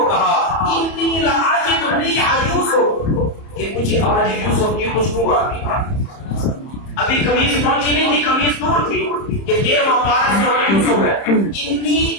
کہا انی لاجد ریح یوسف, کہ مجھے آج یوسف کی خوشبو آتی ہے. ابھی قمیص پہنچی نہیں تھی, قمیص دور تھی کہ 13واں پارہ سے یوسف ہے. انی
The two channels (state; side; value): late; right; 30 ms